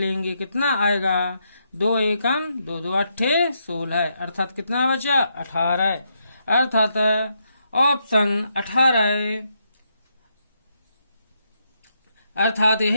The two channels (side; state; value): both; inverted; correlation -0.79